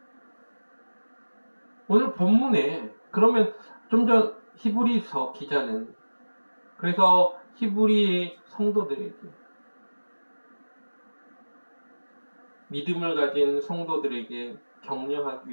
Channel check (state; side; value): inverted; both; correlation -1.00